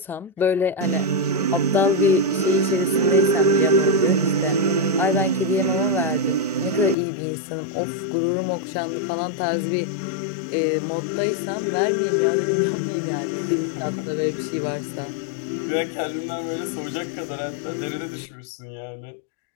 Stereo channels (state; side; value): drops out; right; at 7.0 s